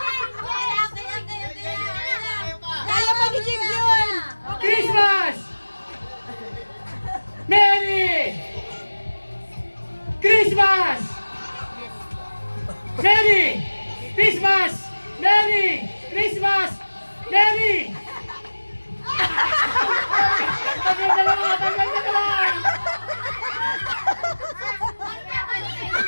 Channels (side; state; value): both; inverted; correlation -1.00